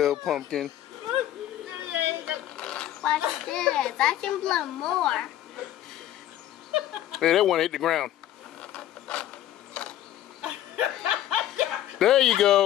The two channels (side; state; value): right; quieter; 12.5 dB